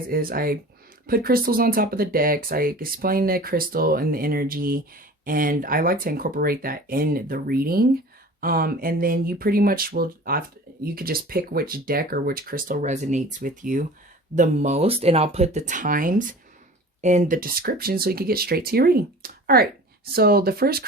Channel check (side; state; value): both; normal; correlation 0.41